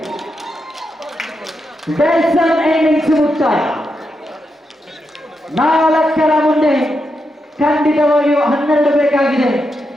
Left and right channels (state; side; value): normal; both; correlation 0.85